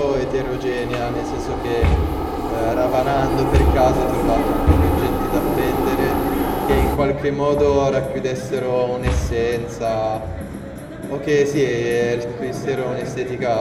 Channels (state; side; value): identical; both; correlation 1.00